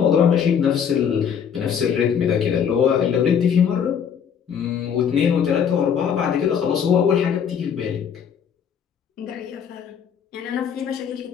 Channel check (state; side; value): quieter; right; 7.8 dB